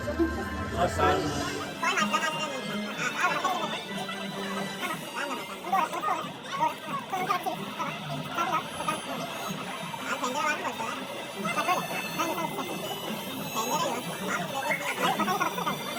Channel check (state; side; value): identical; both; correlation 1.00